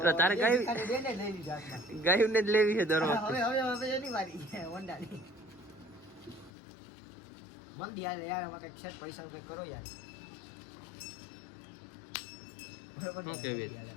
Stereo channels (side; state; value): right; drops out; at 6.5 s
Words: તારે બે ગાય- ભિખારી બેને લઈ લીધી હાથમાં. ગાયું ને જ લેવી છે દર હવે વખતે. હવે હવે એની વારી છે હોન્ડાની. મંદી હાલે યાર, આમાં કંઈક છે પૈસાનું કંઈક કરો યાર. બરોબર ને? શું કહેવી? મંદી હાલે.